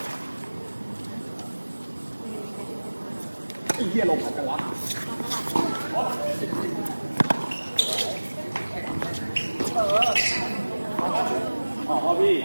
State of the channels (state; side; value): inverted; both; correlation -1.00